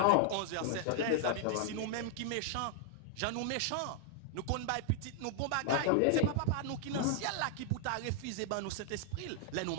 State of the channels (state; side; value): different; both; correlation -0.01